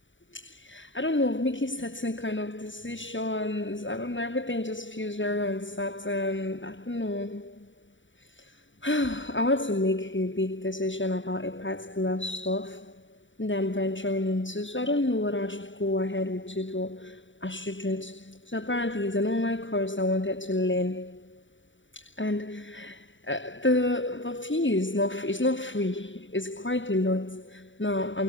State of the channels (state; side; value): late; right; 0.55 ms